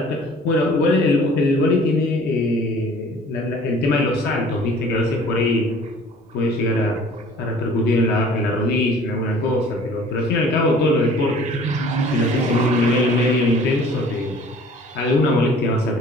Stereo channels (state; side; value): normal; both; correlation 0.50